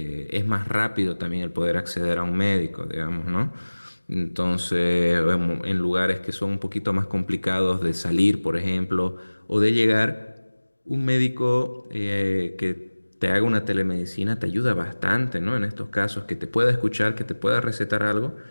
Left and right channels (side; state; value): both; inverted; correlation -1.00